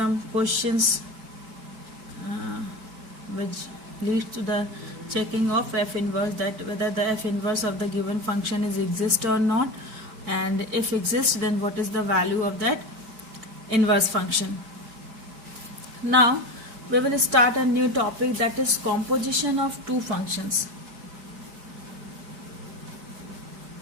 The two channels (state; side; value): late; left; 4.6 ms